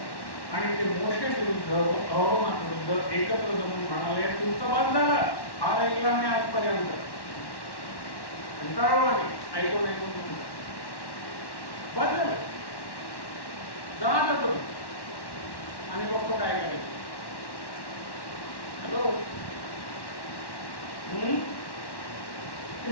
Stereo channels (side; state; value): right; late; 1.1 ms